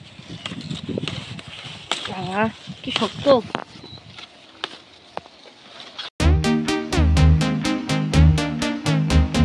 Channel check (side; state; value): both; identical; correlation 1.00